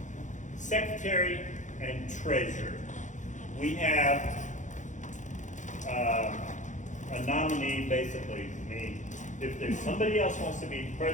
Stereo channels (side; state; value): right; late; 0.36 ms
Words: secretary, and treasurer. We have a nominee, basically, me. If there's somebody else wants to be